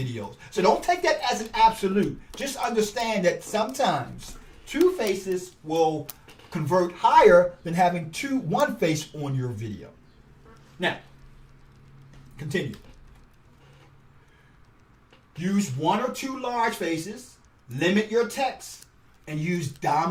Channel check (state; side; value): identical; both; correlation 1.00